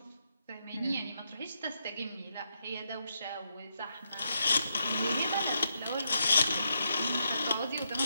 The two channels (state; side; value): inverted; both; correlation -0.81